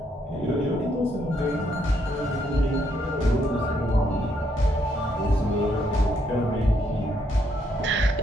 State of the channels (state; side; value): normal; both; correlation 0.74